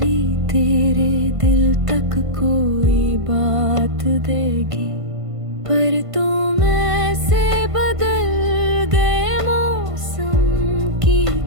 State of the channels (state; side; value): late; left; 1.5 ms